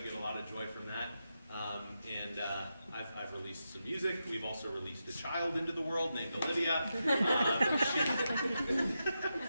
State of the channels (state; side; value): inverted; both; correlation -0.87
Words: get a lot of joy from that. I've released some music. We've also released a child into the world named Olivia.